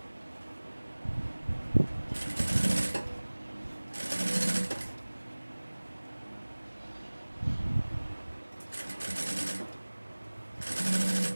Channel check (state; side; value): inverted; both; correlation -1.00